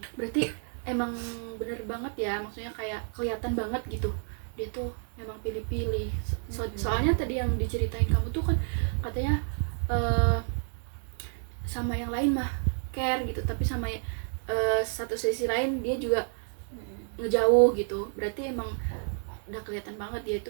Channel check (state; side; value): silent; left; 58 dB below the other